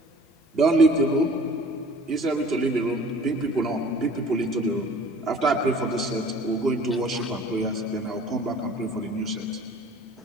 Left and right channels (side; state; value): both; normal; correlation 0.49